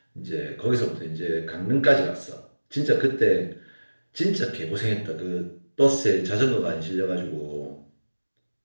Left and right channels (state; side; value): inverted; both; correlation -1.00